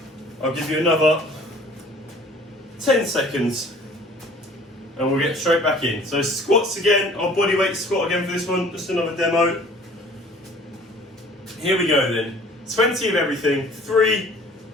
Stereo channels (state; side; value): normal; both; correlation 0.51